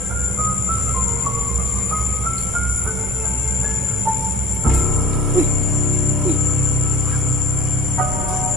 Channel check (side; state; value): both; normal; correlation 0.49